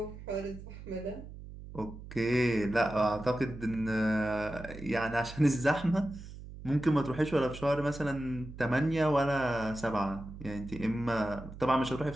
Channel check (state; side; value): noise; right; hum, 13 dB below the sound